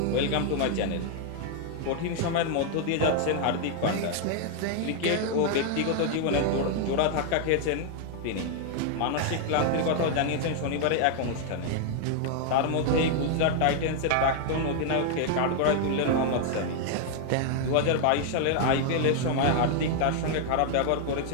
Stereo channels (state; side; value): different; both; correlation 0.00